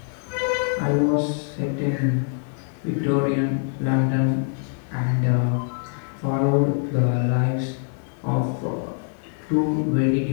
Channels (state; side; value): silent; right; 63 dB below the other